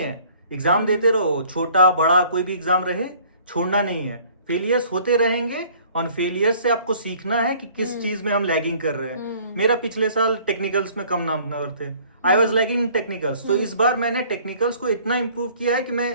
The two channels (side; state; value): both; inverted; correlation -0.54